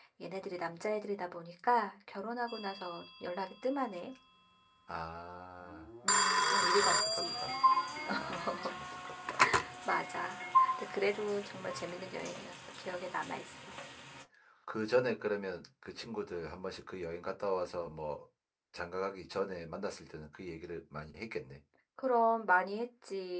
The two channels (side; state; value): both; identical; correlation 1.00